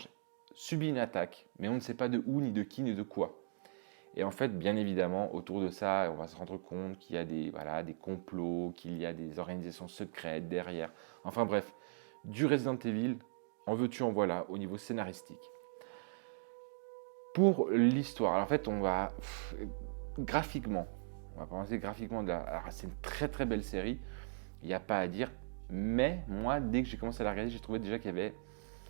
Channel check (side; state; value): left; silent; digital silence